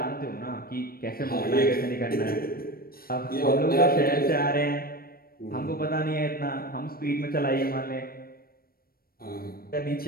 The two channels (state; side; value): late; right; 0.43 ms